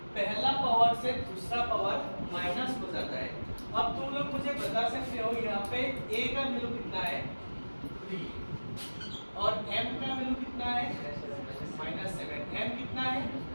पहला पावर से दूसरा पावर माइनस हो जाता है अब तुम लोग मुझे बता सकते हो यहाँ पे a का वैल्यू कितना है 3 और m का वैल्यू कितना है -7 m कितना है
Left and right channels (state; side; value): inverted; both; correlation -1.00